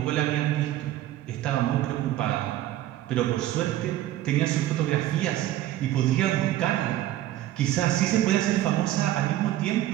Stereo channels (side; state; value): left; quieter; 13.9 dB